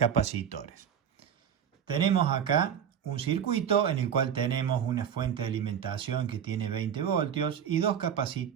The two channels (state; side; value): quieter; left; 8.5 dB